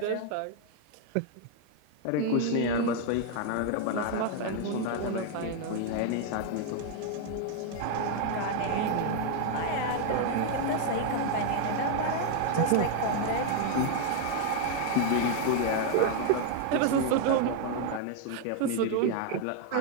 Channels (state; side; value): different; both; correlation 0.00